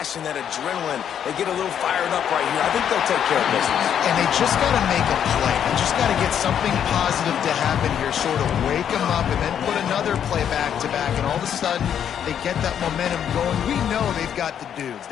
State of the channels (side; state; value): right; quieter; 9.0 dB